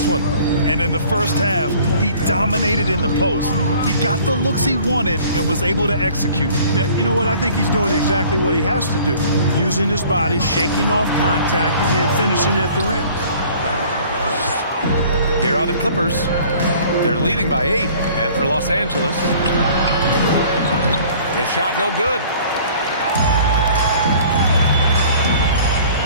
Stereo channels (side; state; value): both; inverted; correlation -0.51